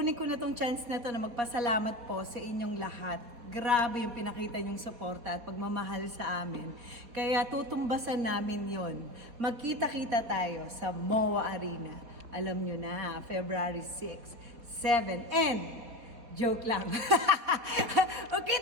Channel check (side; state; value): left; late; 4.2 ms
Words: ko na tong chance na to na magpasalamat po sa inyong lahat. Grabe yung pinakita nyong suporta at pagmamahal sa amin. Kaya tutumbasan namin yon. Magkita-kita tayo sa MOA Arena. Alam nyo na, February 6, 7, and joke lang.